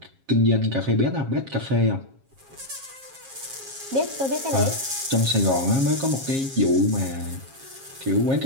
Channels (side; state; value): left; late; 7.4 ms